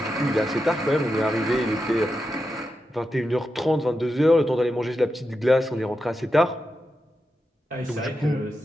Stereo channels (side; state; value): both; normal; correlation 0.88